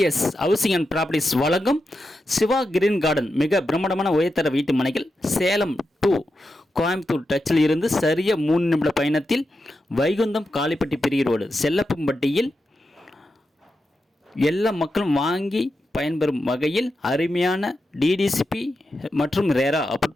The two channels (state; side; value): normal; both; correlation 0.88